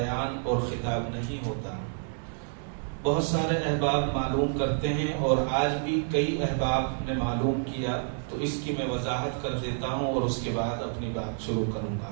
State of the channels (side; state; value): left; silent; digital silence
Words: اور خطاب نہیں ہوتا، بہت سارے احباب معلوم کرتے ہیں اور آج بھی کئی احباب نے معلوم کیا، تو اس کی میں وضاحت کر دیتا ہوں اور اس کے بعد اپنی بات شروع کروں گا۔